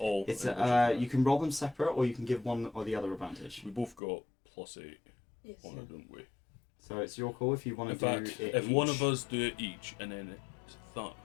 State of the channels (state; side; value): drops out; right; at 4.0 s